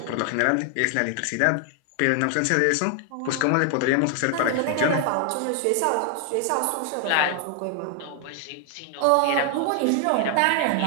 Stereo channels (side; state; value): both; different; correlation 0.00